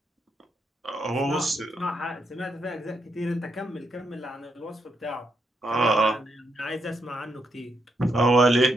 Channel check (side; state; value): both; normal; correlation 0.80